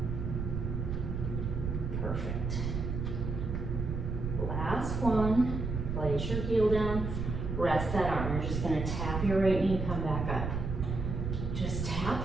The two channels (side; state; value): right; noise; rumble, 3 dB below the sound